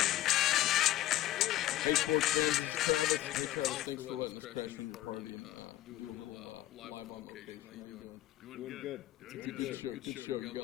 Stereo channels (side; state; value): right; quieter; 14.4 dB